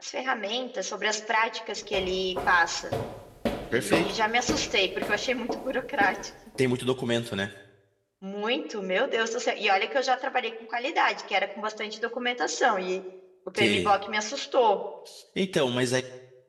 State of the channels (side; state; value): both; identical; correlation 1.00